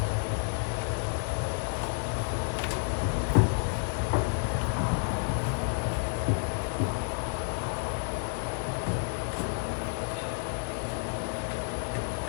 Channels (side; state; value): right; silent; 57 dB below the other